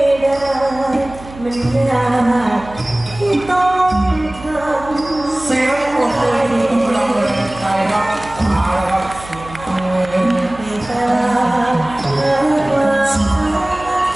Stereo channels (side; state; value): right; noise; hum, 17 dB below the sound